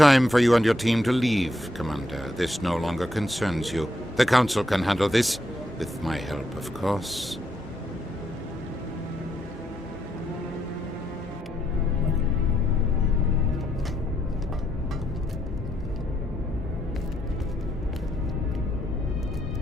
for you and your team to leave, Commander. This no longer concerns you. The Council can handle this, with my help, of course.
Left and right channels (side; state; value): both; normal; correlation 0.77